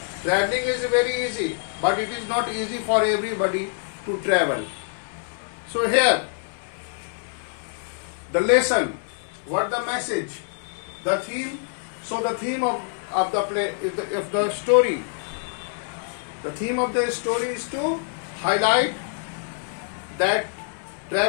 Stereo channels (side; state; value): right; silent; digital silence